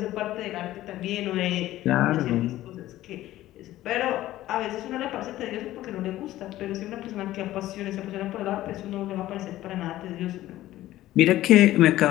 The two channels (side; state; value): right; quieter; 15.0 dB